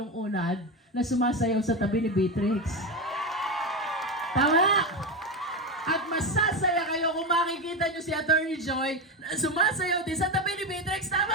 Unad na sumasayaw sa tabi ni Beatrix. Tama? At masasaya kayo kung makikita nyo si Attorney Joy na sumasayaw din sa tabi ni Beatrix.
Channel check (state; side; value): normal; both; correlation 0.16